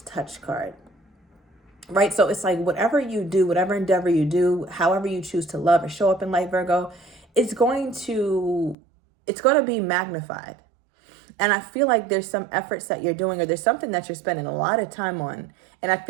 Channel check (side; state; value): left; drops out; at 8.8 s